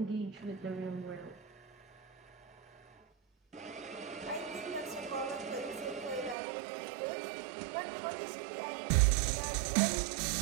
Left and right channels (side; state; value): left; drops out; at 6.4 s